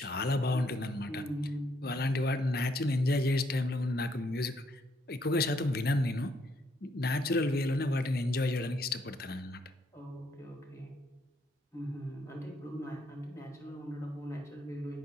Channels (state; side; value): normal; both; correlation 0.72